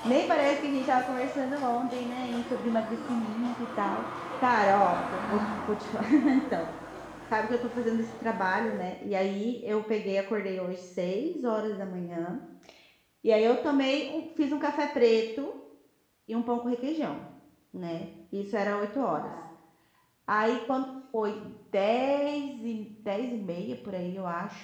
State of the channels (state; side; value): identical; both; correlation 1.00